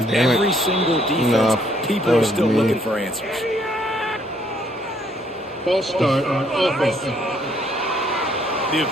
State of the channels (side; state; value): both; normal; correlation 0.67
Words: every single defense. People are still looking for answers. False start on offense. The